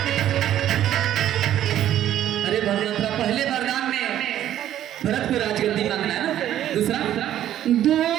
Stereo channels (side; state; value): left; quieter; 11.8 dB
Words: अरे भगवंतरा, पहले वरदान में भरत को राजगद्दी मांगना है ना, दूसरा